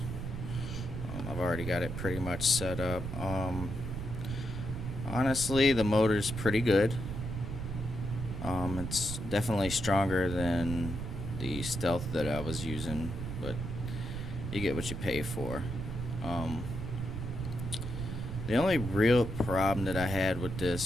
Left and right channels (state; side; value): noise; right; rumble, 6 dB below the sound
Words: I've already got it pretty much set up. Honestly, the motor's pretty good. It's definitely stronger than the Stealth that I was using, but you get what you pay for. The only real problem that I had with